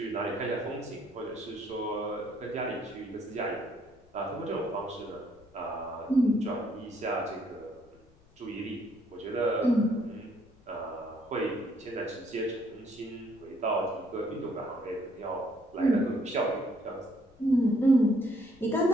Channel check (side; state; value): left; noise; rumble, 28 dB below the sound